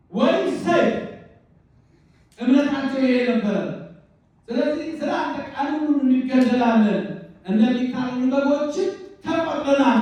ወይስ ሰይፍ? እምነታቸው ይሄ ነበረ። ስለዚህ ስላንተ ቀኑን ሁሉ እንገደላለን፣ እንደሚታረዱ በጎችም ተቆጥረናል።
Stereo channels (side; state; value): both; identical; correlation 1.00